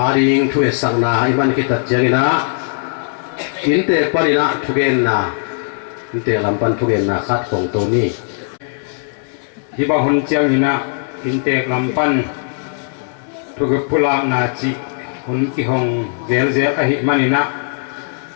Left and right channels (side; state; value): right; silent; digital silence